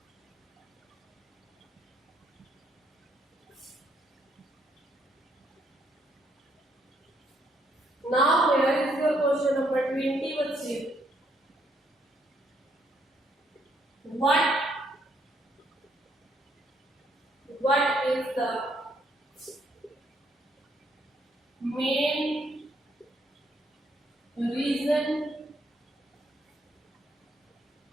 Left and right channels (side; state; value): both; normal; correlation 0.72